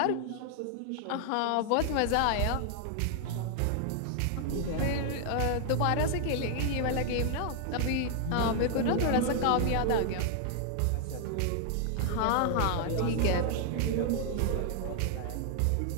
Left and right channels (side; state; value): both; different; correlation 0.00